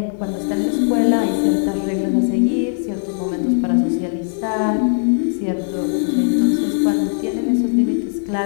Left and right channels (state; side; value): silent; right; 67 dB below the other